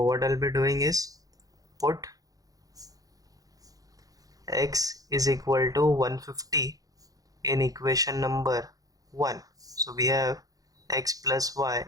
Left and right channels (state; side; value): late; left; 0.17 ms